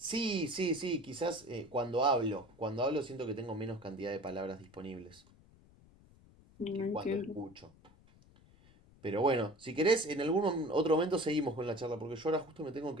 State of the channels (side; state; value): left; noise; rumble, 26 dB below the sound